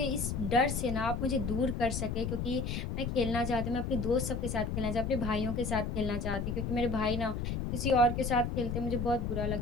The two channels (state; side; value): noise; left; rumble, 2 dB below the sound